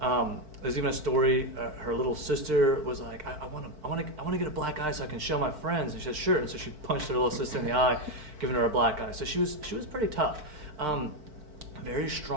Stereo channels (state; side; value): late; left; 4.5 ms